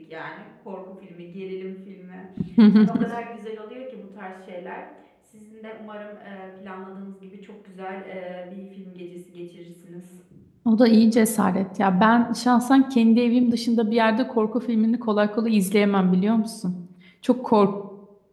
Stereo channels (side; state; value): both; identical; correlation 1.00